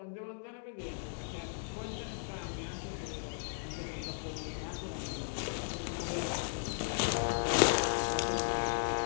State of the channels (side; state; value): right; silent; digital silence